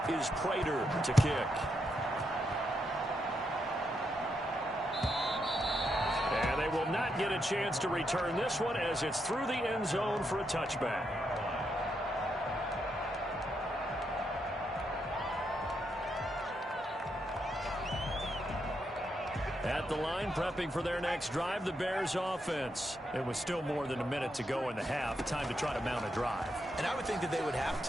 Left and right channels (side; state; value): both; normal; correlation 0.81